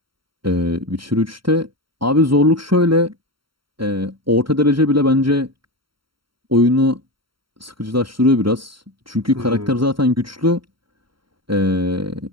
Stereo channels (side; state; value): left; late; 0.73 ms